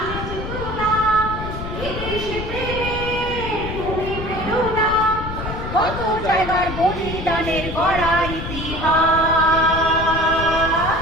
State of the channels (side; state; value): left; noise; rumble, 7 dB below the sound